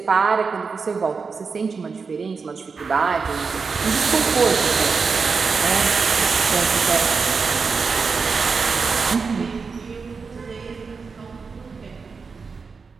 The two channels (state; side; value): quieter; left; 5.0 dB